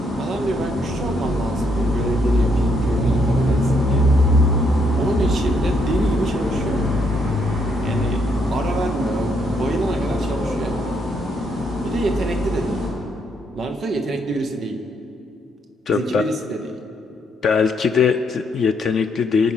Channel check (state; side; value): normal; both; correlation 0.73